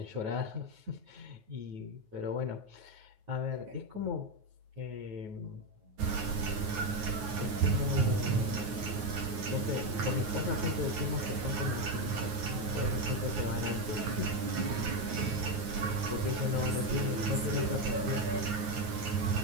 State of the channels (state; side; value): late; left; 9.4 ms